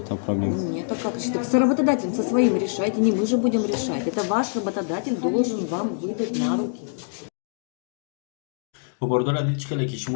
проблему. Нет, а как решить? Так с работодателем, со своим решайте, не мы же будем решать. Это ваш работодатель должен вам выдать на руки. Бародари азиз, хеле ки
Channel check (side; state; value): right; silent; digital silence